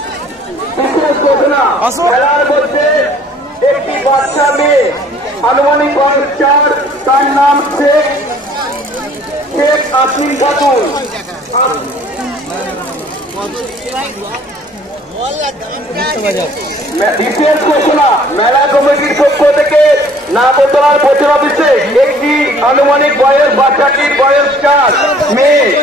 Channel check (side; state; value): both; normal; correlation 0.55